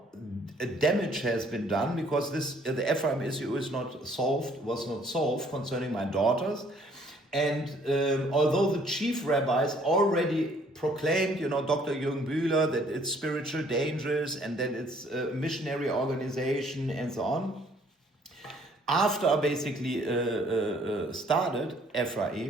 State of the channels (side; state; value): both; normal; correlation 0.61